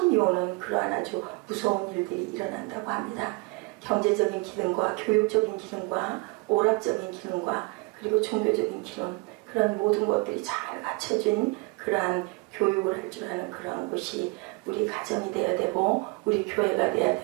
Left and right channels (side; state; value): left; quieter; 27.2 dB